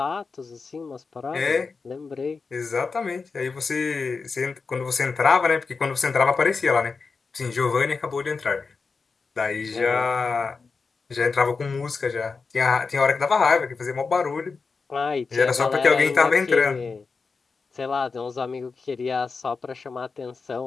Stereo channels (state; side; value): quieter; right; 4.6 dB